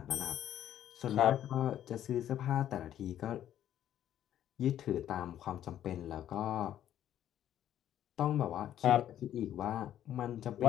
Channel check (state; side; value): quieter; right; 11.3 dB